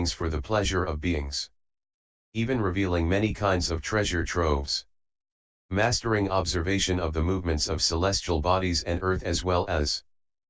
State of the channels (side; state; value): both; identical; correlation 1.00